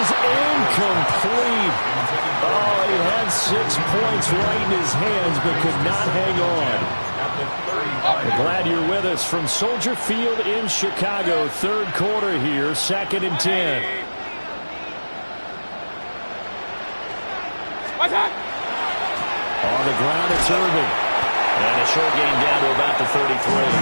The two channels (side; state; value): both; inverted; correlation -1.00